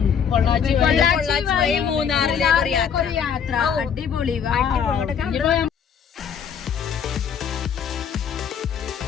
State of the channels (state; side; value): quieter; right; 7.4 dB